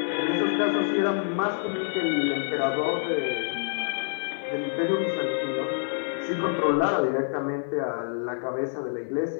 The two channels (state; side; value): silent; right; digital silence